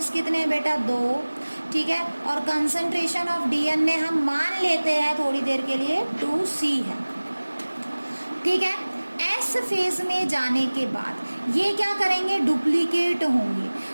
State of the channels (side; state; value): both; inverted; correlation -1.00